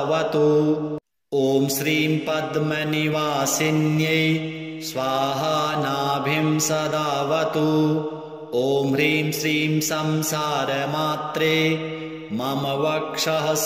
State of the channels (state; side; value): identical; both; correlation 1.00